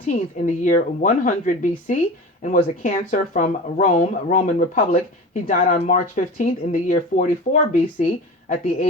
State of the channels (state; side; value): normal; both; correlation 0.33